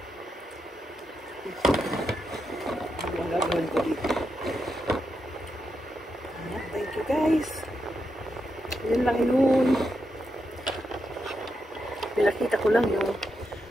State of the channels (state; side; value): normal; both; correlation 0.84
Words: Ano ang gagawin ko dito? Thank you guys. Yun lang yun. Pinakita ko lang yung